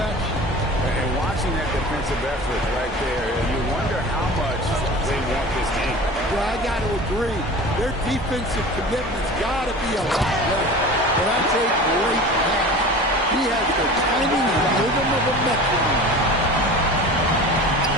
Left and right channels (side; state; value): both; normal; correlation 0.37